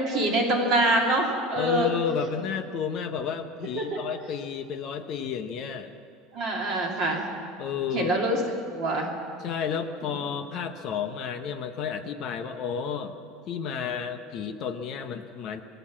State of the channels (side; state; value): both; normal; correlation 0.30